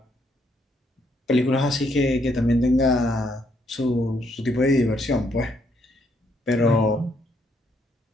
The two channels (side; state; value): both; normal; correlation 0.73